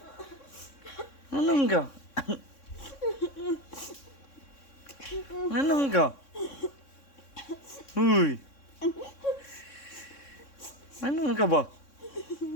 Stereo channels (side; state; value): right; late; 3.6 ms